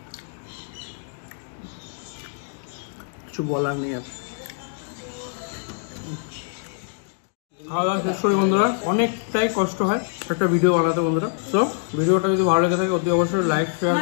কিছু বলার নেই আর। খাওয়া দাওয়া শেষ করি বন্ধুরা, অনেকটাই কষ্ট হয় একটা ভিডিও বানাতে বন্ধুরা। তো ভিডিওটা যদি ভালো লেগে থাকে অতি অবশ্যই লাইক শেয়ার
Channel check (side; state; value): right; silent; digital silence